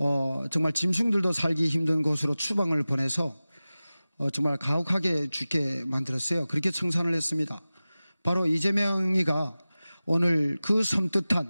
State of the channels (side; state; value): both; inverted; correlation -0.97